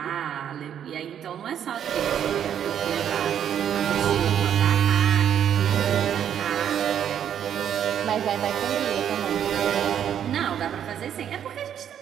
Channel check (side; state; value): left; quieter; 9.3 dB